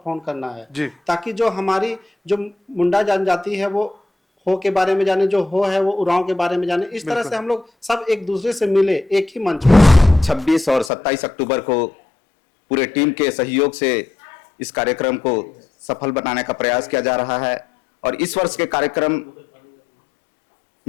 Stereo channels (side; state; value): right; drops out; at 10.9 s